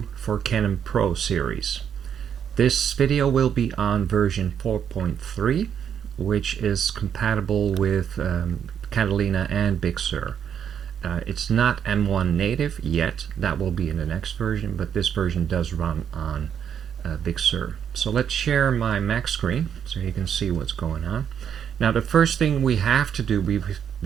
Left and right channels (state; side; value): quieter; left; 8.4 dB